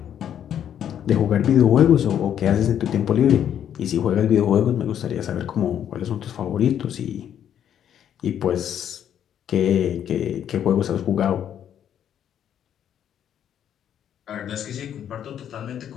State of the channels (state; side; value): quieter; right; 9.7 dB